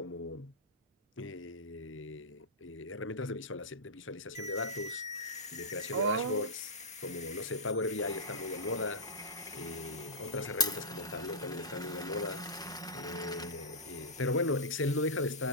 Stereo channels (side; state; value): both; normal; correlation -0.12